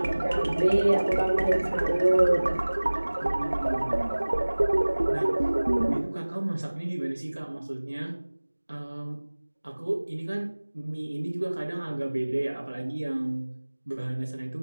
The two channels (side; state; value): both; inverted; correlation -1.00